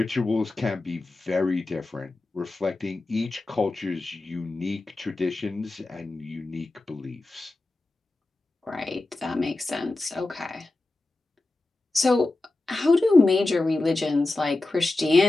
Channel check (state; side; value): quieter; right; 3.0 dB